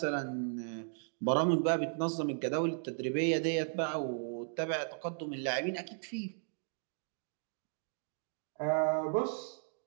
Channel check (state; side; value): silent; left; digital silence